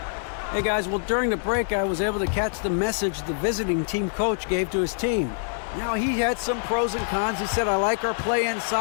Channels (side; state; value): right; silent; 62 dB below the other